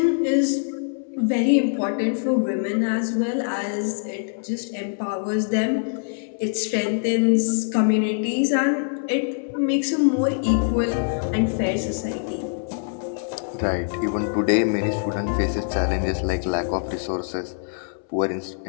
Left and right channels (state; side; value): silent; right; 63 dB below the other